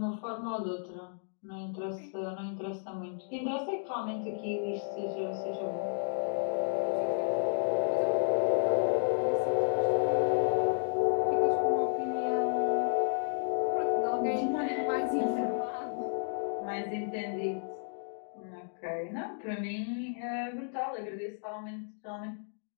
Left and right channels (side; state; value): right; silent; digital silence